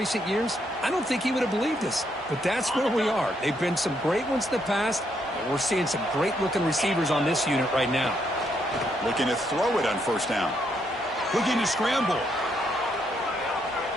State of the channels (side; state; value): both; normal; correlation 0.75